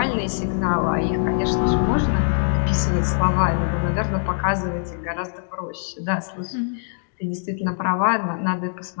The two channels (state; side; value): silent; right; digital silence